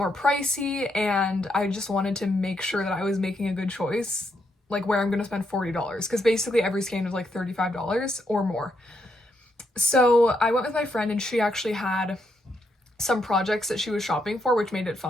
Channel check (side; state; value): both; normal; correlation 0.78